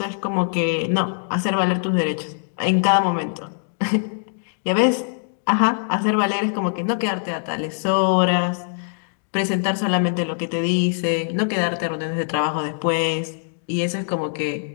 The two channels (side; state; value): right; silent; digital silence